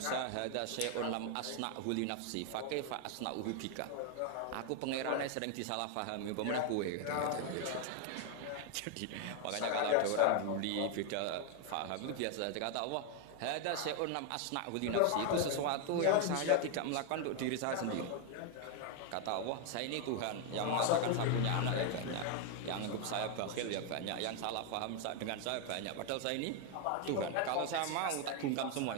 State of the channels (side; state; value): both; different; correlation 0.01